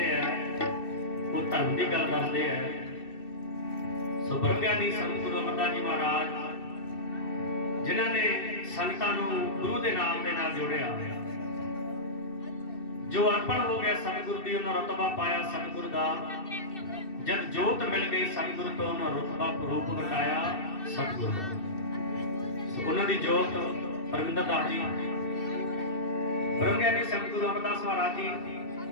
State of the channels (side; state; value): right; late; 2.7 ms